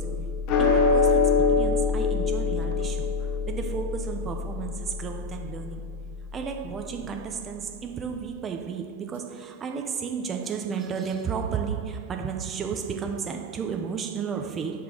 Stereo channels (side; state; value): both; normal; correlation 0.12